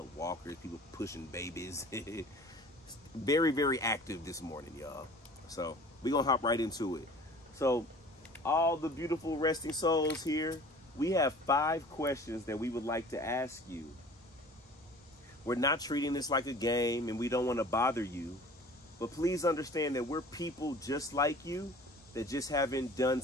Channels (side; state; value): both; normal; correlation 0.45